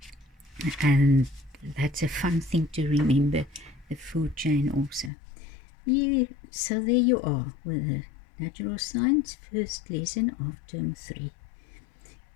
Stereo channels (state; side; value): drops out; right; at 5.1 s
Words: and that's a fun thing to remember, the food chain also. Yeah, so there you are with the Natural Science first lesson of term 3.